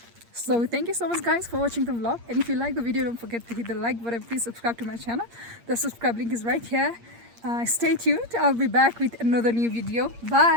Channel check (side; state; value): left; late; 8.6 ms